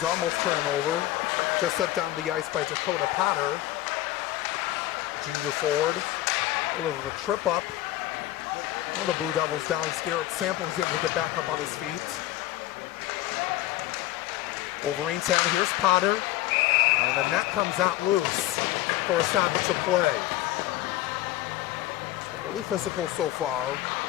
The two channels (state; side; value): quieter; right; 15.4 dB